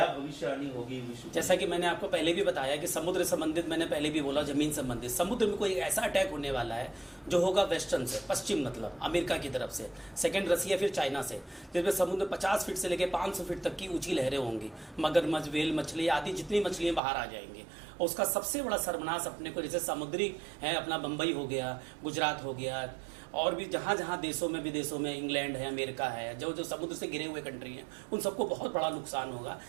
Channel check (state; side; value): drops out; left; at 17.0 s